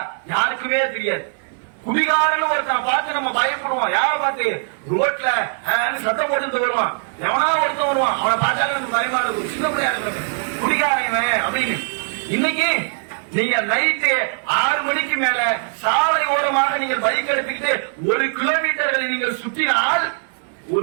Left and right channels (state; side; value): silent; left; digital silence